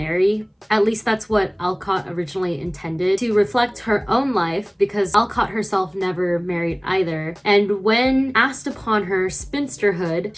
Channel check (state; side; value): identical; both; correlation 1.00